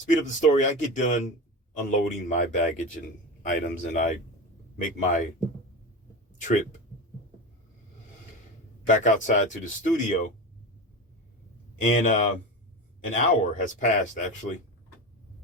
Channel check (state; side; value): normal; both; correlation 0.24